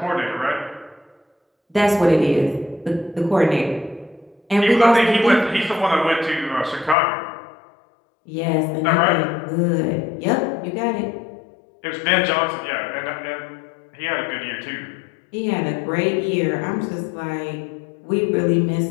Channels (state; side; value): drops out; right; at 7.0 s